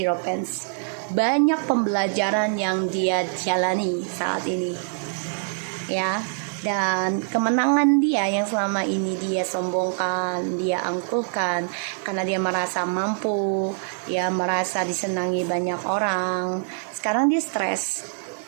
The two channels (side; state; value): left; silent; 59 dB below the other